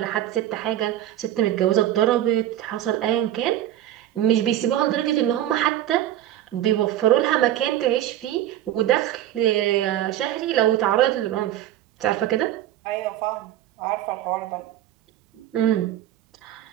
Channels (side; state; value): left; quieter; 12.6 dB